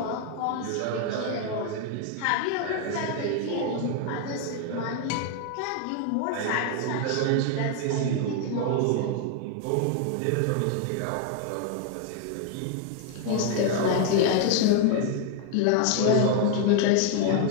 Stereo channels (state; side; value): different; both; correlation 0.00